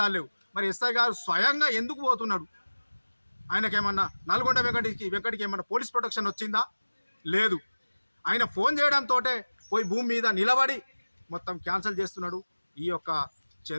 లేవు. మరి ఎస్ఐ గారు స్వయంగా ఎందుకు పోతున్నాడు? ఆయనకేమన్నా నల్గొండ వెంకటికి ఏమన్నా పోలీస్ ప్రొటెక్షన్ వచ్చిందా? లేదు. ఆయన ఫోన్ చేయడంతో పోయి భూమి మీద నిలబడి మొత్తం క్యాన్సిల్ చేస్తున్నాడు. ఈ యొక్క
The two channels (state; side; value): inverted; both; correlation -1.00